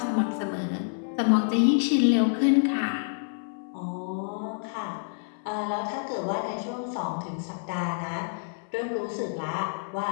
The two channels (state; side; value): silent; right; 59 dB below the other